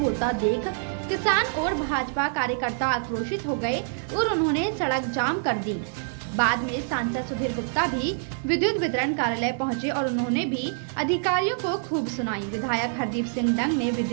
देख किसान और भाजपा कार्यकर्ता आक्रोशित हो गए और उन्होंने सड़क जाम कर दी। बाद में सांसद सुधीर गुप्ता भी विद्युत वितरण कार्यालय पहुंचे और उन्होंने भी अधिकारियों को खूब सुनाई। विधायक हरदीप सिंह डंग ने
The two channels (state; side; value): silent; left; digital silence